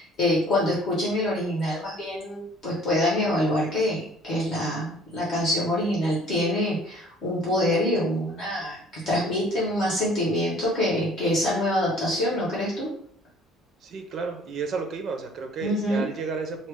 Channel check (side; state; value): both; normal; correlation 0.54